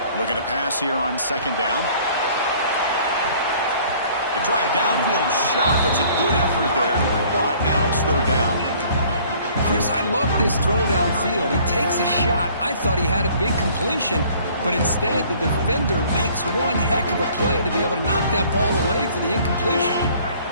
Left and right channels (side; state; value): both; inverted; correlation -0.55